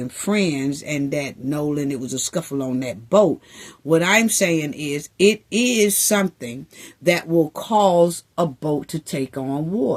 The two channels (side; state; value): both; identical; correlation 1.00